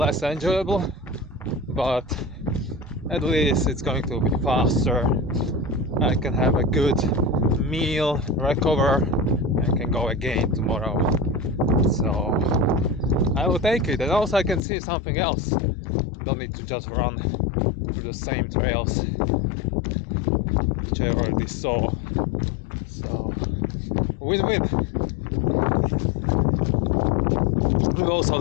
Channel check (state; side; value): drops out; right; at 14.6 s